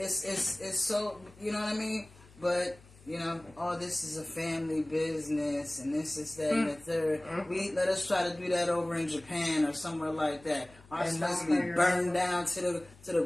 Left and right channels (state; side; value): noise; left; hum, 24 dB below the sound